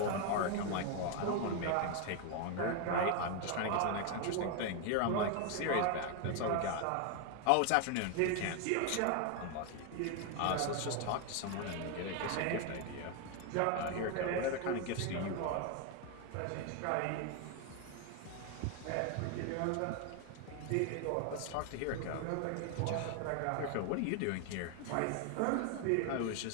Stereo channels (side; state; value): both; different; correlation 0.01